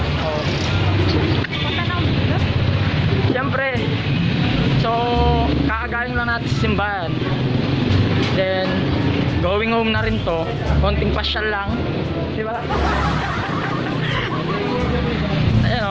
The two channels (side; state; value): both; identical; correlation 1.00